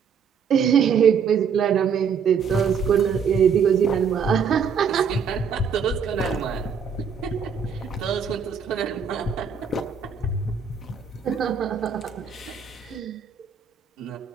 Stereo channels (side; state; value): left; quieter; 6.5 dB